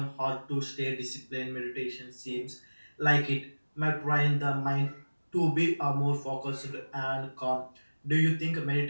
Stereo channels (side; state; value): both; inverted; correlation -1.00